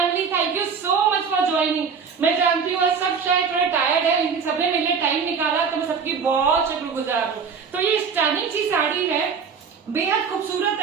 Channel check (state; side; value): quieter; left; 6.0 dB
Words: thank you so much for joining. मैं जानती हूँ सब शायद थोड़ा टायर्ड है लेकिन सबने मेरे लिए टाइम निकाला तो मैं सबकी बहुत शुक्रगुजार हूँ। तो ये स्टनिंग सी साड़ी है, बेहद खूबसूरत